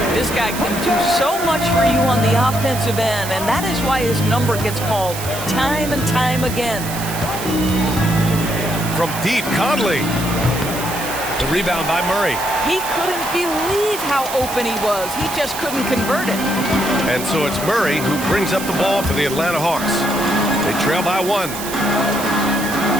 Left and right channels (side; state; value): right; noise; hiss, 9 dB below the sound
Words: This guy can do so much for you on the offensive end, and that is why his number gets called time and time again. From deep, Conley. The rebound by Murray. He couldn't believe how open he was. He just couldn't convert it. And so it's Murray who brings up the ball for the Atlanta Hawks. They trail by 1.